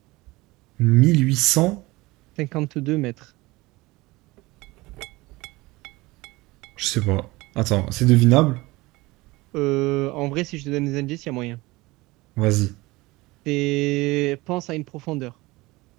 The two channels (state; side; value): quieter; left; 21.4 dB